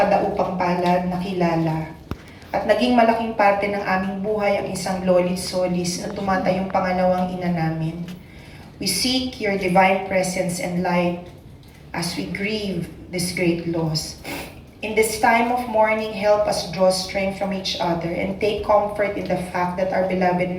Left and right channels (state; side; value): identical; both; correlation 1.00